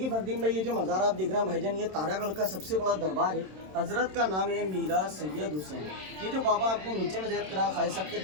फरदीन भाई, ये जो मज़ार आप देख रहे हैं भाईजान, ये तारागढ़ का सबसे बड़ा दरबार है। हजरत का नाम है मीरा सैयद हुसैन। ये जो बाबा आपने नीचे में ज़ैद करा खाई साहब के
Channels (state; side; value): late; left; 27 ms